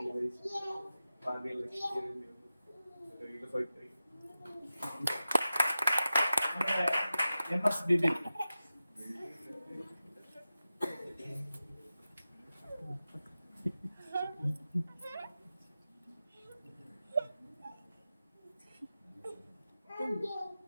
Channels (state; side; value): inverted; both; correlation -0.94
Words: ഭാഗ്യം ലക്ഷ്യം ബിബിൻ